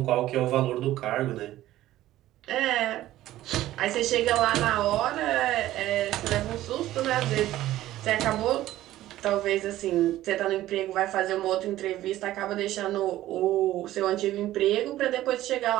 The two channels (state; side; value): quieter; left; 14.7 dB